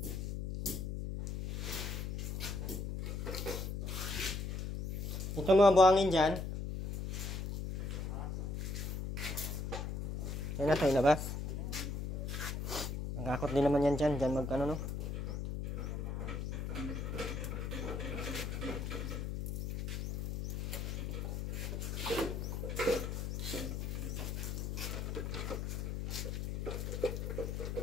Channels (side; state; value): left; noise; hum, 3 dB below the sound